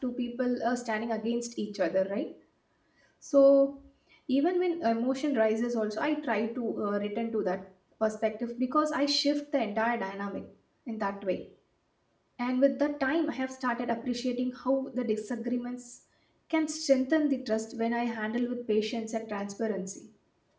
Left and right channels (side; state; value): both; identical; correlation 1.00